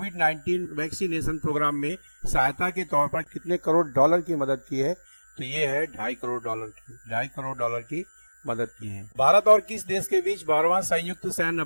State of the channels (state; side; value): inverted; both; correlation -1.00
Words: वैक्सीनेशन प्रोग्राम में सहायता के तौर पर कितने करोड़ डॉलर की मदद की है? तो ये है $2.5 करोड़ की मदद की है। भारत और किस देश के बीच 12वां संयुक्त सैन्य